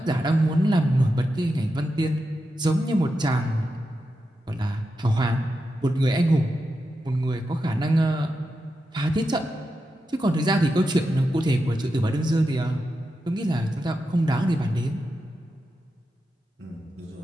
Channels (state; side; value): normal; both; correlation 0.88